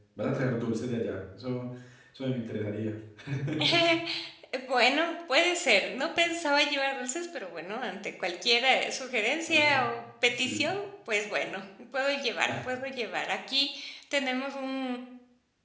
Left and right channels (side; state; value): both; identical; correlation 1.00